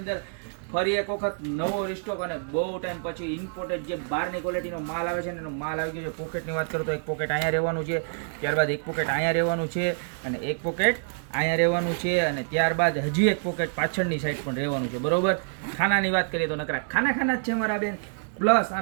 ફરી એક વખત નવો રિસ્ટોક અને બહુ ટાઈમ પછી ઇમ્પોર્ટેડ જે બહારની ક્વોલિટીનો માલ આવે છે ને એનો માલ આવી ગયો છે. પોકેટની વાત કરું તો એક પોકેટ અહીંયા રહેવાનું છે, ત્યારબાદ એક પોકેટ અહીંયા રહેવાનું છે અને એક પોકેટ અહીંયા રહેવાનું છે અને ત્યારબાદ હજી એક પોકેટ પાછળની સાઈડ પણ રહેવાનું છે. બરોબર. ખાનાની વાત કરીએ તો નકરા ખાના જ છે મારા બેન. પ્લસ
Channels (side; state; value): left; silent; digital silence